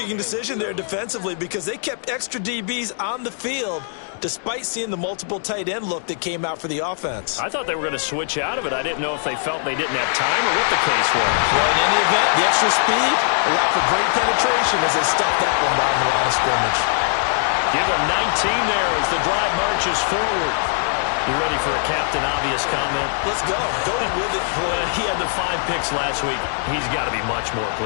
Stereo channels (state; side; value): silent; right; digital silence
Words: decision there defensively because they kept extra DBs on the field despite seeing the multiple tight end look that came out for the offense. I thought they were going to switch out of it. I didn't know if they felt they didn't have time or what the case was. Well, in any event, the extra speed allowed for great penetration as they stuffed that one down the line of scrimmage. Give him 19 there as the drive marches forward. You ready for a Captain Obvious comment? Let's go. Go with it. He had the 5 picks last week. He's got to be much more